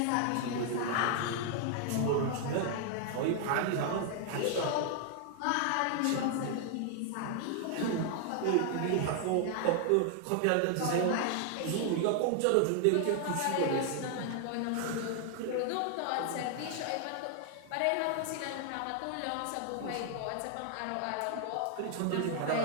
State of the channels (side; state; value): both; different; correlation 0.00